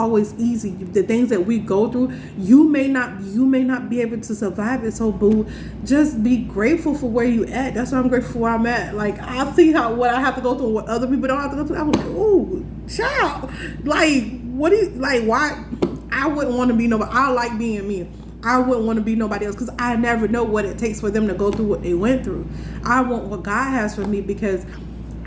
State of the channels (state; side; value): identical; both; correlation 1.00